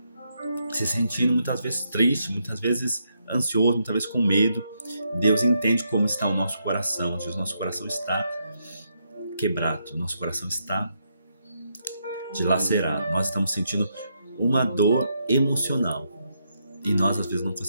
se sentindo muitas vezes triste, muitas vezes ansioso, muitas vezes com medo. Deus entende como está o nosso coração. O nosso coração está quebrado, o nosso coração está dilacerado. Nós estamos sentindo uma dor emocional e nós às vezes não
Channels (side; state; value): both; inverted; correlation -0.79